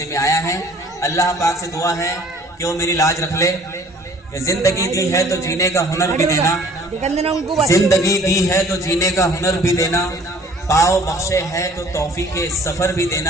में आया है। अल्लाह पाक से दुआ है कि वो मेरी लाज रख ले। जिंदगी दी है तो जीने का हुनर भी देना, जिंदगी दी है तो जीने का हुनर भी देना, पाओ बख्शे है तो तौफीक के सफर भी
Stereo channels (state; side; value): normal; both; correlation 0.53